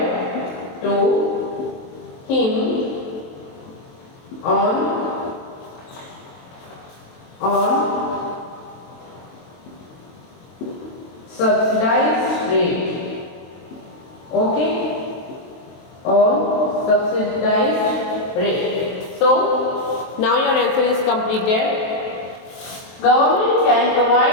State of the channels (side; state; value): right; late; 23 ms